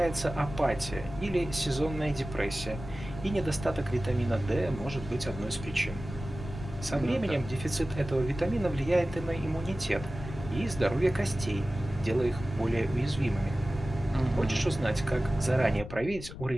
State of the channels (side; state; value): left; noise; rumble, 11 dB below the sound